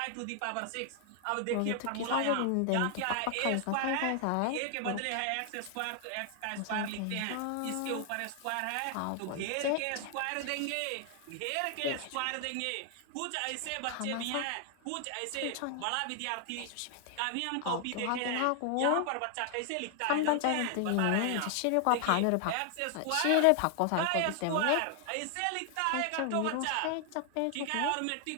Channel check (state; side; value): different; both; correlation 0.00